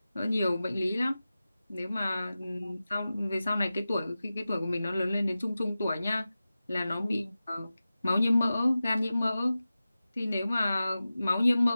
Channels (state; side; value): inverted; both; correlation -0.95